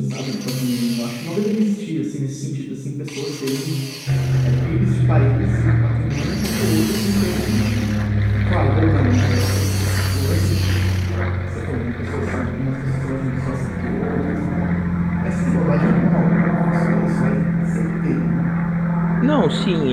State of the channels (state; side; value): identical; both; correlation 1.00